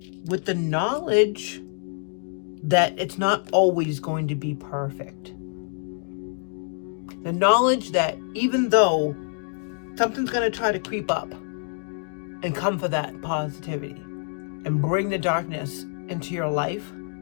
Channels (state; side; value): silent; right; digital silence